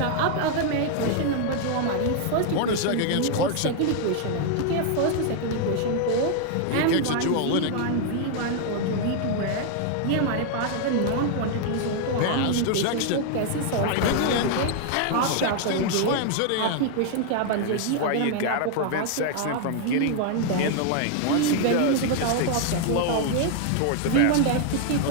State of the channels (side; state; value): both; different; correlation 0.00